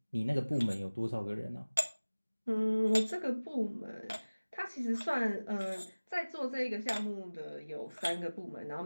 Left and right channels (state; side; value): inverted; both; correlation -1.00